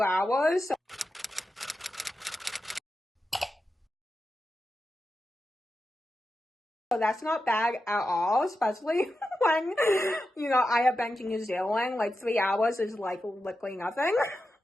hours. So that's not bad at all, especially when, you know, I have been to New Zealand. Like, 3 hours is like literally nothing.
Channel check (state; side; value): normal; both; correlation 0.90